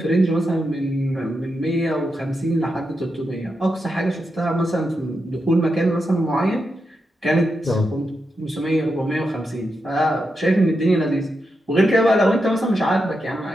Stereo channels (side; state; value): both; normal; correlation 0.86